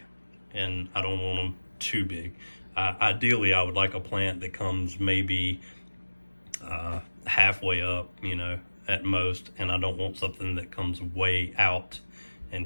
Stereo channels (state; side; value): inverted; both; correlation -1.00